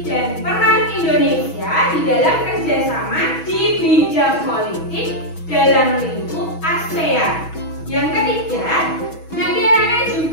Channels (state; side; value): late; right; 6.2 ms